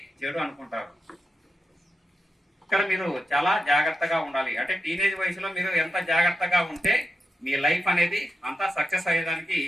చెడు అనుకుంటారు. ఇక్కడ మీరు చాలా జాగ్రత్తగా ఉండాలి. అంటే టీనేజ్ వయసులో మీరు ఎంత జాగ్రత్తగా ఉంటే మీ లైఫ్ అనేది అంతా సక్సెస్ అయ్యేదానికి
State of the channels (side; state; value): both; normal; correlation 0.87